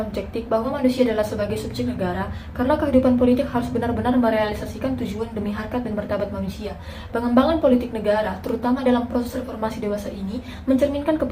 objektif bahwa manusia adalah sebagai subjek negara, karena kehidupan politik harus benar-benar merealisasikan tujuan demi harkat dan martabat manusia. Pengembangan politik negara, terutama dalam proses reformasi dewasa ini, mencerminkan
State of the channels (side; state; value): both; identical; correlation 1.00